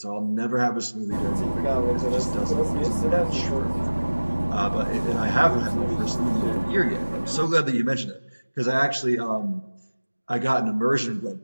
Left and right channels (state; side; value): inverted; both; correlation -1.00